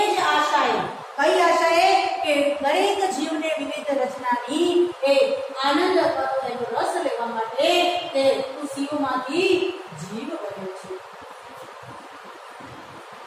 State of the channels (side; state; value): both; identical; correlation 1.00